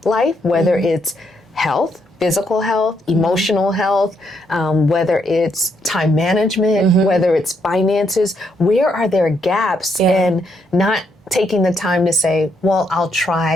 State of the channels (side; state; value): both; normal; correlation 0.76